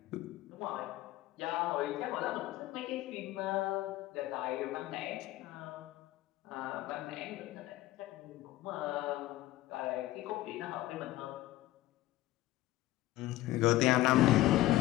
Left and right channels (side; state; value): right; quieter; 16.2 dB